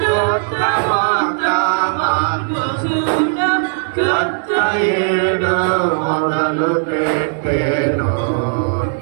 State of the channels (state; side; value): silent; left; 68 dB below the other